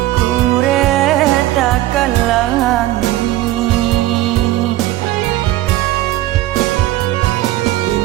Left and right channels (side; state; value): left; quieter; 15.7 dB